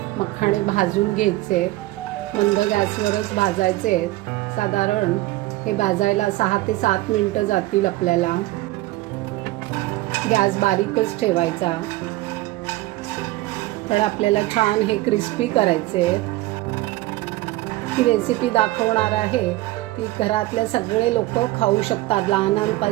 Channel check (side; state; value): left; quieter; 18.4 dB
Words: मखाणे भाजून घ्यायचे, मंद गॅसवरच भाजायचे। साधारण हे भाजायला 6 ते 7 मिनिटं जातील आपल्याला। गॅस बारीकच ठेवायचा, तर आपल्याला छान हे क्रिस्पी करायचे। ही रेसिपी दाखवणार आहे ती घरातले सगळे लोक खाऊ शकतात,